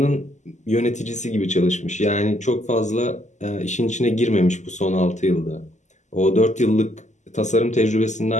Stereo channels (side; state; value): right; late; 0.34 ms